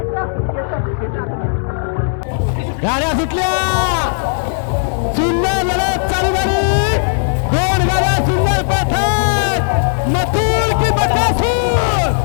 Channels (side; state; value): right; silent; digital silence